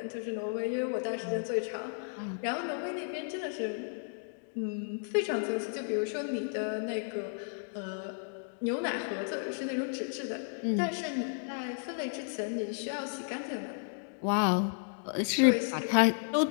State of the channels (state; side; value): silent; right; digital silence